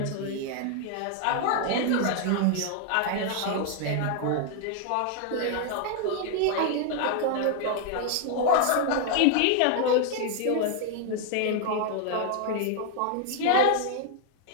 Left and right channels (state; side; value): different; both; correlation 0.00